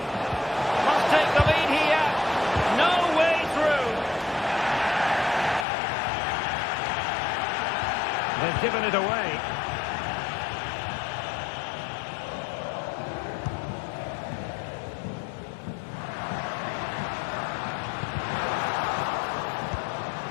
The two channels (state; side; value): drops out; right; at 5.7 s